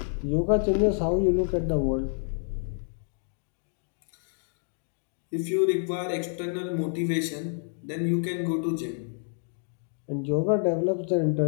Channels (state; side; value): silent; right; 59 dB below the other